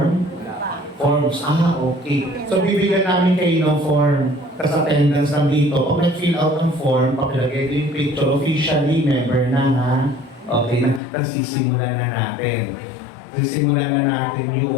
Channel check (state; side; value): drops out; right; at 11.0 s